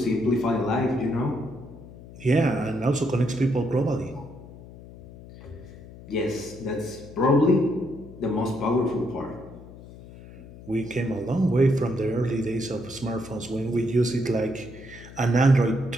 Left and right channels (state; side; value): noise; left; hum, 17 dB below the sound